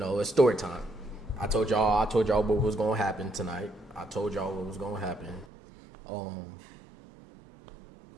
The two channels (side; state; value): left; drops out; at 5.5 s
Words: story time. I told y'all what was gonna happen tonight. I told y'all what was gonna happen. I'm